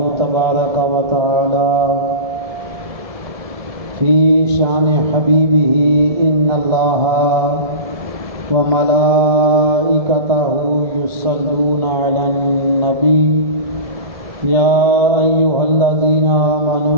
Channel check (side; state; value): left; late; 1.7 ms